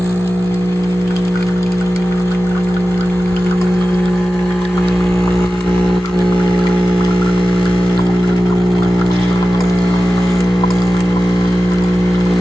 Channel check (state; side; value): normal; both; correlation 0.94